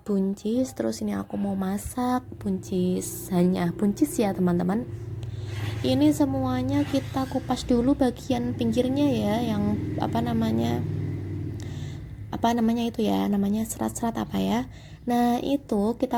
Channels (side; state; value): both; identical; correlation 1.00